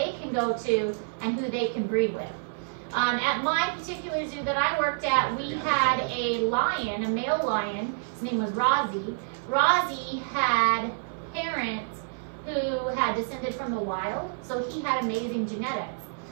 can go to and who they can breed with. At my particular zoo that I worked at, we had a lion, a male lion. His name was Rozzy. Rozzy had parents who had descended from the wild, so he had amazing genetics.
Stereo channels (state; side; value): silent; left; 59 dB below the other